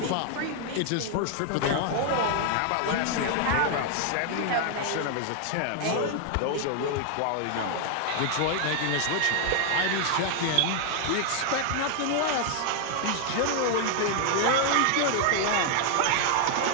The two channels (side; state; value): both; different; correlation 0.00